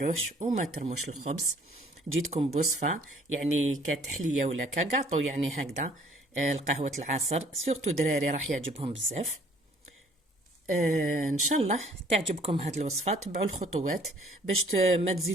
وما ترموش الخبز. جيتكم بوصفة يعني كتحلية ولا كقاطو، يعني هكذا القهوة العصر، سورتو دراري راح يعجبهم بزاف. ان شاء الله تعجبكم هذه الوصفه. تبعوا الخطوات باش ما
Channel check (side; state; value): both; normal; correlation 0.57